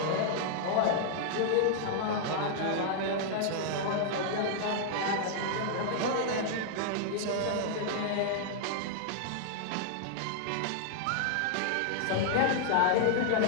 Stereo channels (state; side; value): different; both; correlation -0.01